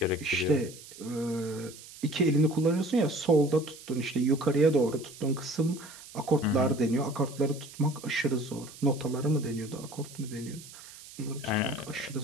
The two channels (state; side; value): noise; right; hiss, 17 dB below the sound